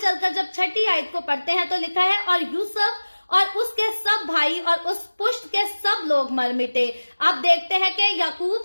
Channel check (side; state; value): both; inverted; correlation -1.00